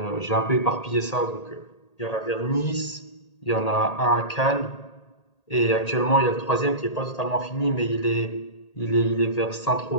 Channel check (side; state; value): right; late; 1.8 ms